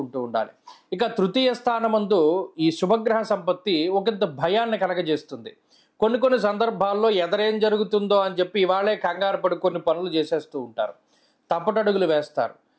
ఉండాలి. ఇక తృతీయ స్థానమందు ఈ శుభగ్రహ సంపత్తి ఒకంత భయాన్ని కలగజేస్తుంది. కొన్ని సందర్భాల్లో ఎదరేం జరుగుతుందో అని చెప్పి ఇవాళే కంగారు పడి కొన్ని పనులు చేసేస్తూ ఉంటారు, తప్పటడుగులు వేస్తారు,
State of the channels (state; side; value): identical; both; correlation 1.00